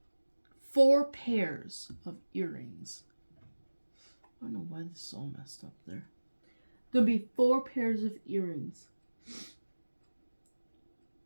4 pairs of earrings. I don't know why this is all messed up there. Going to be 4 pairs of earrings.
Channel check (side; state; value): both; inverted; correlation -1.00